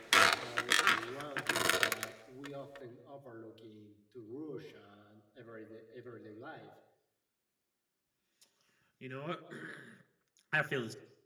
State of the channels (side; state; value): both; identical; correlation 1.00